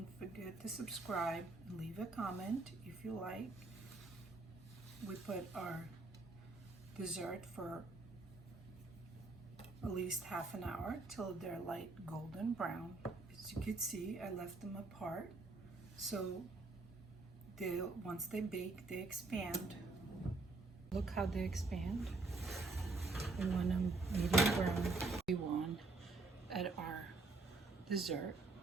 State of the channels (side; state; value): left; quieter; 3.4 dB